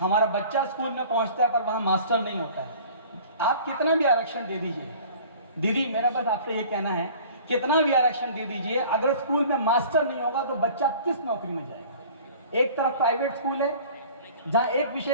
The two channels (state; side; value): inverted; both; correlation -0.46